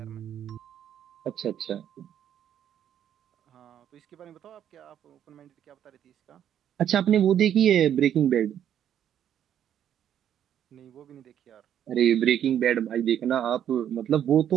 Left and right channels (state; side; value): quieter; left; 9.9 dB